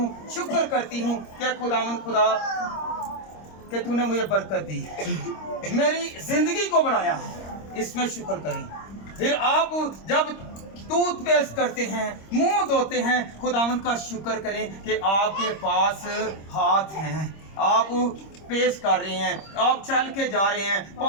शुक्र करती हूँ कि खुदावंद खुदा कि तूने मुझे बरकत दी है, मेरी जिंदगी को बढ़ाया, इसमें शुक्र करें। फिर आप जब टूथपेस्ट करते हैं, मुंह धोते हैं, खुदावंद का शुक्र करें कि आपके पास हाथ हैं, आप पेश कर रहे हैं, आप चल के जा रहे हैं,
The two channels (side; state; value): right; late; 26 ms